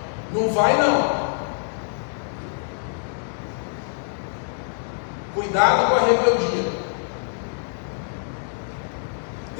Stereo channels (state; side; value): silent; right; 59 dB below the other